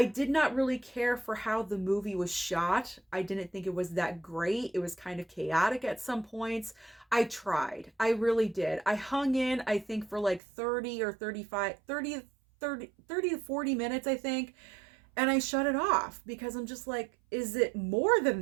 did not really care for how the movie was shot. I didn't think it was that great. It was kind of chaotic at some points. I tried. I really did. I hung in, I think, for like 30 or 35, 30 to 40 minutes, I think. And I shut it off because I'm just like, is it more than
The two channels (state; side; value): drops out; left; at 10.4 s